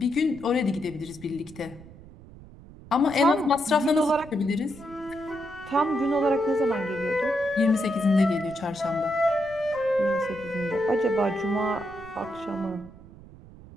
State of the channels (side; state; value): right; noise; rumble, 19 dB below the sound